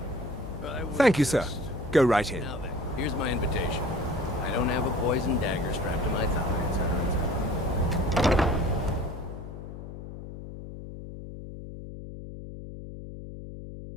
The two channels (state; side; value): noise; left; hum, 11 dB below the sound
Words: Thank you, sir. Go right in. Now then, here's my invitation. I don't have a poison dagger strapped to my thigh, etc., etc.